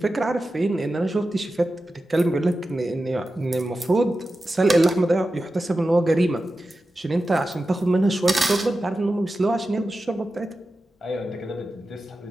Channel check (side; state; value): both; normal; correlation 0.92